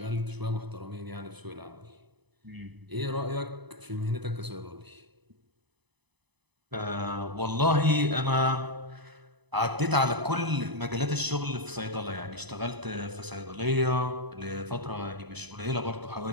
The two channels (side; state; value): left; late; 0.99 ms